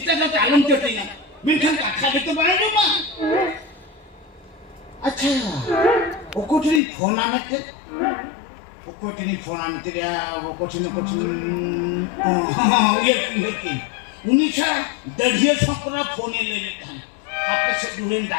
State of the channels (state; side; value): drops out; right; at 6.8 s